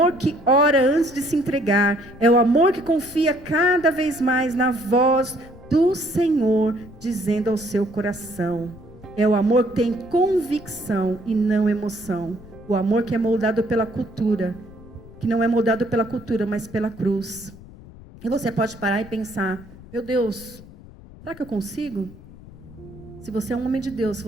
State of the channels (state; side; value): noise; left; rumble, 19 dB below the sound